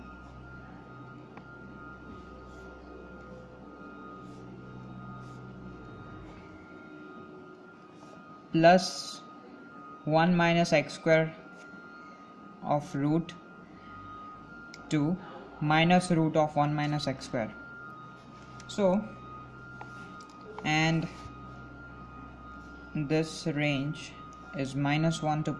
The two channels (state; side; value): identical; both; correlation 1.00